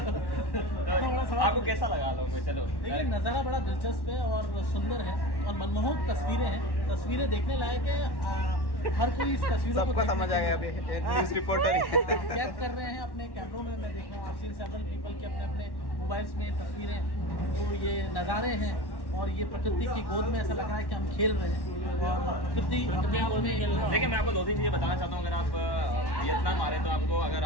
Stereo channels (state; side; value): late; right; 1.1 ms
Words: आपको कैसा लगा हलोंग में? चलो, देखिए नज़ारा बड़ा दिलचस्प है और सुंदर है और मनमोहक तस्वीरें हैं, तस्वीरें देखने लायक है। हर कोई इस तस्वीरों को समझ आएगा। अभी न्यूज़ रिपोर्टर कैद कर रहे हैं अपने कैमरों में। मैं देख रहा हूँ, आप सीन सेवरल पीपल के अपने अपने मोबाइल्स में तस्वीरें, तो ये नज़ारे हैं और ये प्रकृति की गोद में ऐसा लग रहा है कि हम खेल रहे हैं और प्रकृति अपने आप में। देखिए मैं आपको 2-3 चीज़ें बताना चाहता हूँ। अगर आप वियतनाम आ रहे हैं तो आपको, अगर